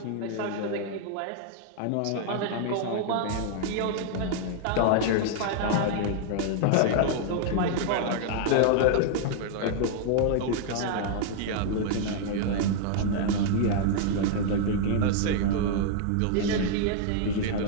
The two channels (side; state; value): both; different; correlation -0.01